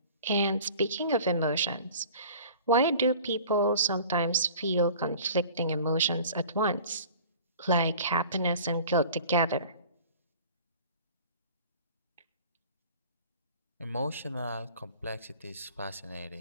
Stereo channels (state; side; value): inverted; both; correlation -0.44